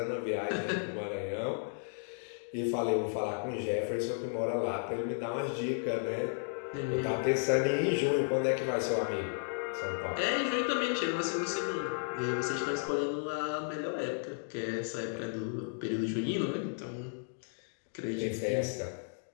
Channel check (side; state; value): right; silent; digital silence